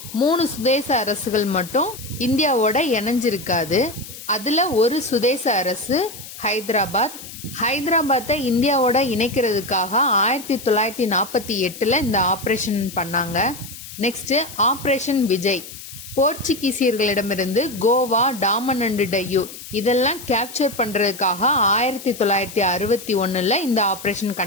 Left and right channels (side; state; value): left; noise; hiss, 14 dB below the sound